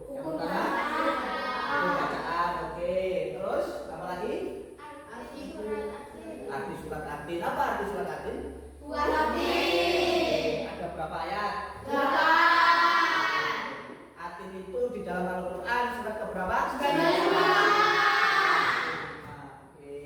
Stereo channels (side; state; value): both; identical; correlation 1.00